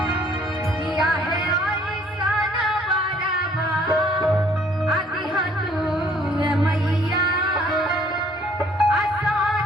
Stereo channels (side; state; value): both; normal; correlation 0.60